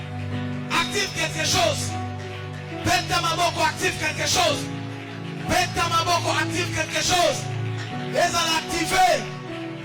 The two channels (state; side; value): identical; both; correlation 1.00